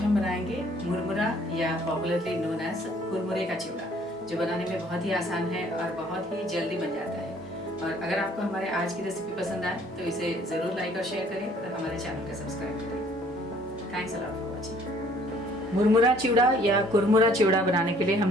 बनाएंगे मुरमुरा या पॉपुलरली नोन एज कुरमुरे का चिवड़ा, जो बनाने में बहुत ही आसान है और बहुत ही जल्दी बन जाता है। और अगर आपको हमारे आज की रेसिपी पसंद आए तो इसे ज़रूर लाइक और शेयर करें और हमारे चैनल को सब्सक्राइब करें। Thanks a lot for watching. मुरमुरा चिवड़ा या कुरमुरा चिवड़ा बनाने के लिए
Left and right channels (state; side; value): normal; both; correlation 0.59